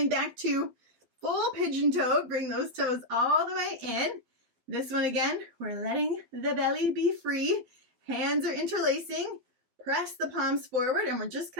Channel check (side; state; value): left; late; 12 ms